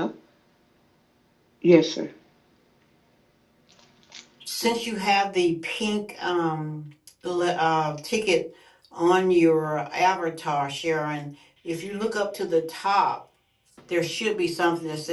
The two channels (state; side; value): identical; both; correlation 1.00